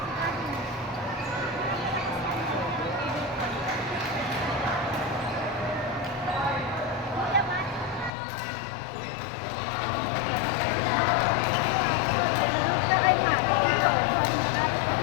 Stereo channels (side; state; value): right; drops out; at 8.1 s